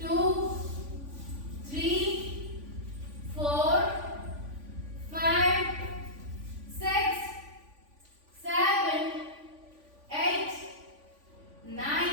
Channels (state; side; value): late; left; 3.5 ms